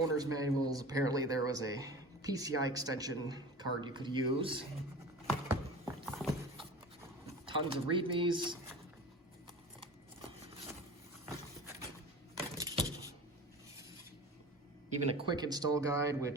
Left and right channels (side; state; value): both; normal; correlation 0.35